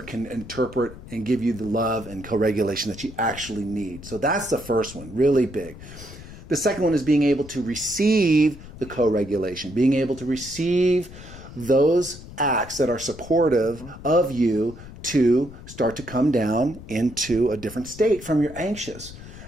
can interpret and give you the love and co-regulation that you actually need. So that's the first one, really big. The second one is being able to receive the co-regulation, being able to receive those acts that are supportive of you to start to come down into a different state from your anxious.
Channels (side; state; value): left; noise; rumble, 15 dB below the sound